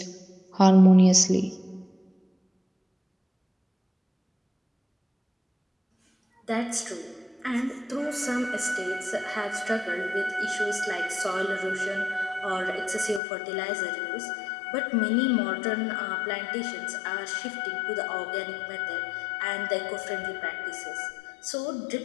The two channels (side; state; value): right; drops out; at 13.2 s